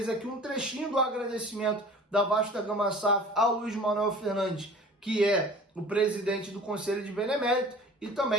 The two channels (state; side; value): normal; both; correlation 0.44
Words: aqui um trechinho do agradecimento da Vasco da Gama SAF ao Luiz Manuel Fernandes, que é o presidente do Conselho de Benemérito, e